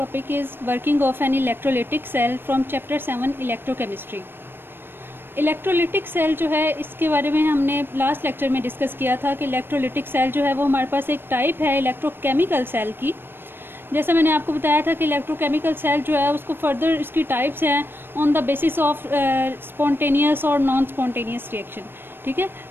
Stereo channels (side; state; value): left; late; 0.10 ms